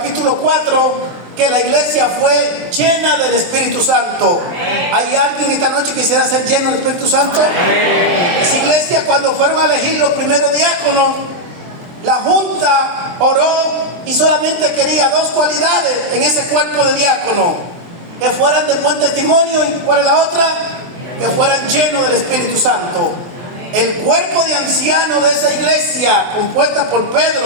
4, que la iglesia fue llena del Espíritu Santo. ¿Hay alguien esta noche que quisiera ser lleno del Espíritu Santo? Esa iglesia, cuando fueron a elegir los primeros diáconos, la junta oró y solamente quería 2 cualidades en ese cuerpo de diácono: que fueran de buen testimonio, y ¿cuál es la otra? Que fueran llenos del Espíritu Santo. El cuerpo de ancianos de esa iglesia, compuesta por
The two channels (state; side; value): late; left; 23 ms